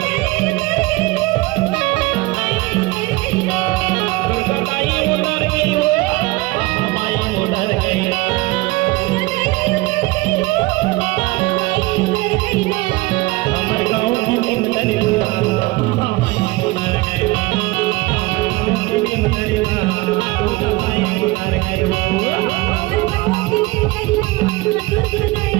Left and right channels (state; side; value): quieter; left; 21.4 dB